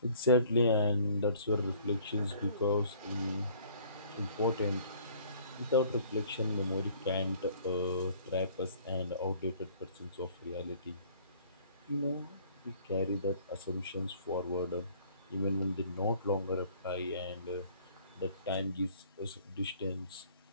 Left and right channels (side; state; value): both; inverted; correlation -0.55